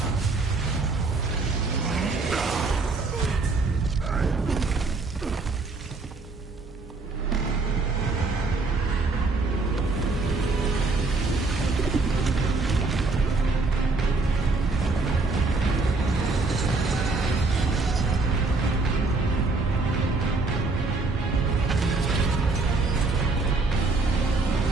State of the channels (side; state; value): left; quieter; 3.7 dB